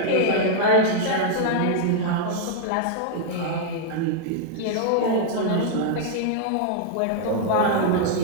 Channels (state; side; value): different; both; correlation -0.01